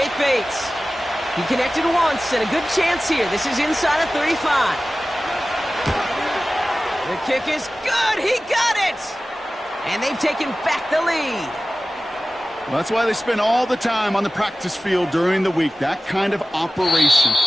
Bates. He connected once and a good chance here. This is inside of 35. The kick is good. He got it. And they've taken back the lead. Well, that's why they spend all the time on the practice field during the week. That kind of operation.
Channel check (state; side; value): normal; both; correlation 0.96